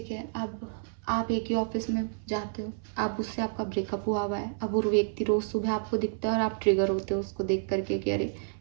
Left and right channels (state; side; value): silent; left; 58 dB below the other